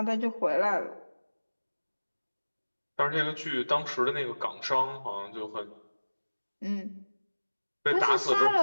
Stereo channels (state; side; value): inverted; both; correlation -1.00